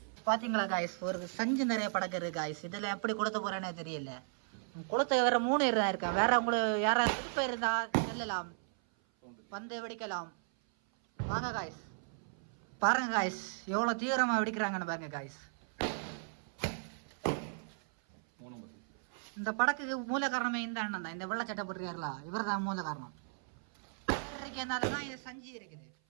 பார்த்தீங்களா காய்ஸ், ஒரு சஞ்சு நிறைய படக்க இருக்கு காய்ஸ். இதில் எப்படி கொளுத்த போகிறேன்னே தெரியல. குளத்தை வேற 3 பேர் தான் இருக்கேன். வேற உங்களுக்கு யாராவது திருப்ப இருந்தா செல்லலாம், வந்து வெடிக்கலாம். வாங்க காய்ஸ், பாருங்க காய்ஸ் எவ்வளோ தீவிரமாக வெடிக்கிறாங்கன்னு பாருங்க காய்ஸ். இந்த படக்குக்கு மூல காரணமே இந்த அண்ணன் தான், இந்த வெள்ளச்சட்டை போட்டுருக்காருல, இவர் தான் மூல காரணம். தான் இது சஞ்சி இருக்குது.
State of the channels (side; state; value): left; silent; 54 dB below the other